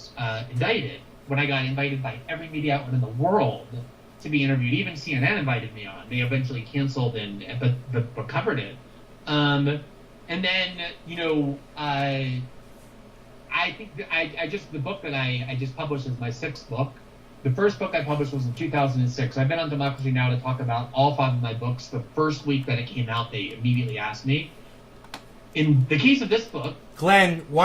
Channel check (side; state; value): both; identical; correlation 1.00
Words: indicted, when I got invited by every media outlet in the world to be interviewed. Even CNN invited me on. They eventually canceled but covered it. And then, I think the book that I just published is my 6th book. The first book I published was in 2006. I've been on Democracy Now! To talk about all 5 of my books. The first week that it came out, they immediately asked me. In the case of this book... Glenn,